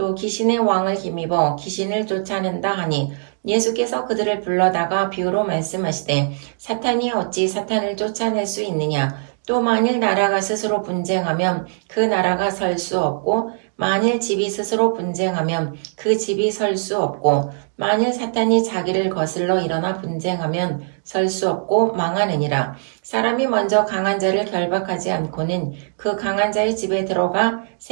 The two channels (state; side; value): silent; left; digital silence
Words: 귀신의 왕을 힘입어 귀신을 쫓아낸다 하니 예수께서 그들을 불러다가 비유로 말씀하시되 사탄이 어찌 사탄을 쫓아낼 수 있느냐. 또 만일 나라가 스스로 분쟁하면 그 나라가 설 수 없고 만일 집이 스스로 분쟁하면 그 집이 설 수 없고 만일 사탄이 자기를 거슬러 일어나 분쟁하면 설 수 없고 망하느니라. 사람이 먼저 강한 자를 결박하지 않고는 그 강한 자의 집에 들어가